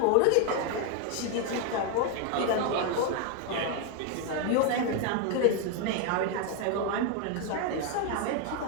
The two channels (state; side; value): different; both; correlation 0.01